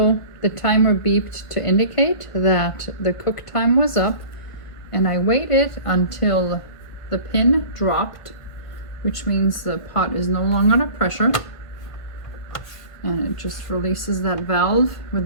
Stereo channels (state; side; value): late; right; 1.7 ms